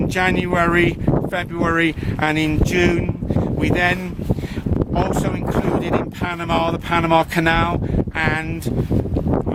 January, February and in June. We then also included in Panama the Panama Canal, and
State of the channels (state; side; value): identical; both; correlation 1.00